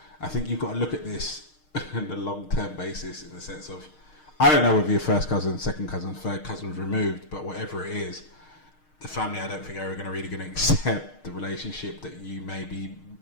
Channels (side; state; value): right; late; 6.5 ms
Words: I think you've got to look at this on a long-term basis in the sense of, I don't know whether your first cousin, second cousin, third cousin was removed, but whatever it is, the family I don't think are really going to accept the relationship that you may be